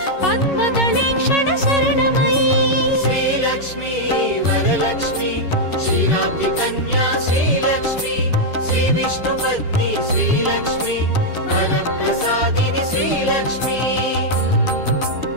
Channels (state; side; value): late; right; 11 ms